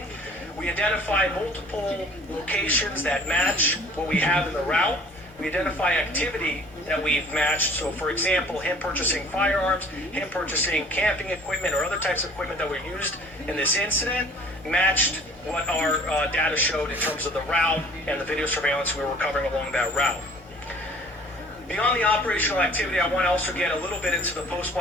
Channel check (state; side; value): normal; both; correlation 0.50